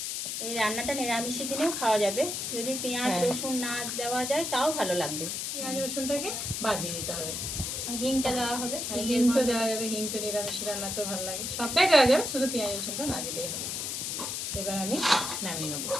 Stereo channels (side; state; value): left; noise; hiss, 3 dB below the sound